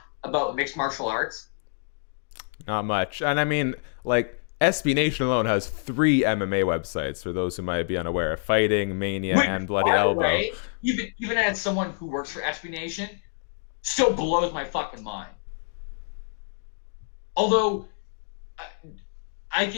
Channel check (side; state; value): right; silent; 60 dB below the other